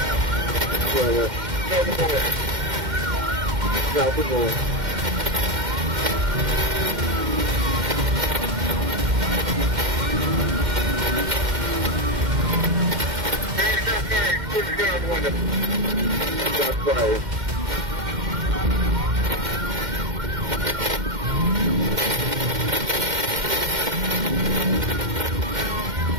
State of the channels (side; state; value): left; late; 2.1 ms